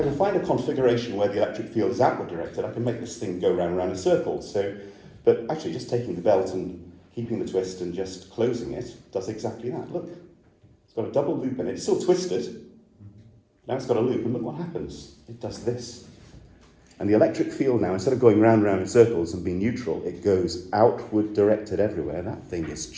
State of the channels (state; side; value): identical; both; correlation 1.00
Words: can find a configuration where the electric field is outward directed, I can make this thing go round and round in circles. So, but actually just taking the belt and keeping the twist and just closing it does exactly that. Look, it's got a double loop in it. It's still twisted. Now it's got a loop, and look what happens. It does this. And the electric field now, instead of going round and round in circles and being neutral, it goes outward directed everywhere. That thing is